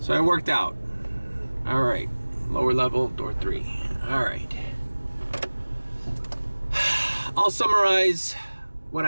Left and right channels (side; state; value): both; inverted; correlation -1.00